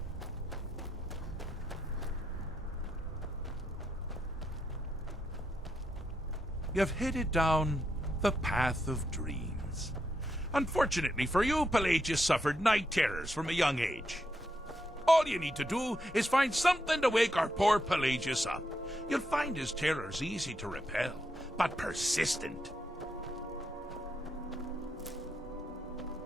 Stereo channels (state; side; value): normal; both; correlation 0.81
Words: You've headed down the path of dreams. Unfortunately for you, Pelagius suffered night terrors from a young age. All you need to do is find something to wake our poor Pelagius up. You'll find his terrors easy to repel, but persistent.